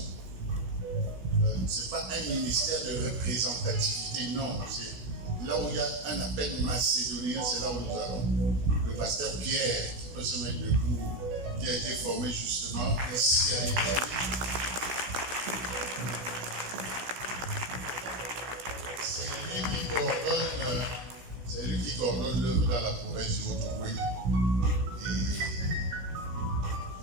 Ce n'est pas un ministère de représentativité, non. C'est là où il y a un appel macédonien, c'est là où nous allons. Le pasteur Pierre, qui peut se mettre debout, qui a été formé justement ici à l'Italie. C'est lui qui coordonne l'œuvre dans la province du Haut-Ogooué.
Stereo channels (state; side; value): late; left; 16 ms